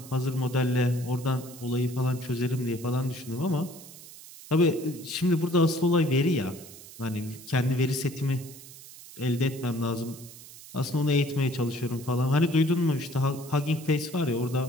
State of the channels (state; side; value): noise; right; hiss, 17 dB below the sound